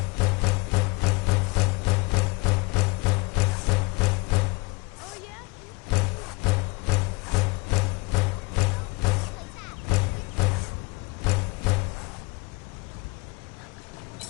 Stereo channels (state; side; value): quieter; right; 25.3 dB